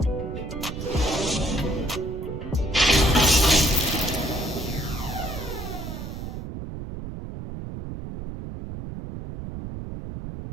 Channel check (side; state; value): right; noise; rumble, 8 dB below the sound